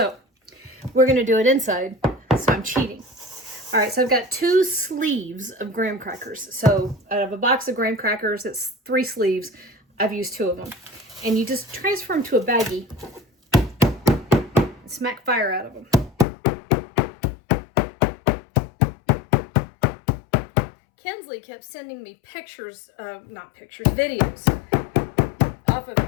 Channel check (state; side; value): drops out; right; at 16.2 s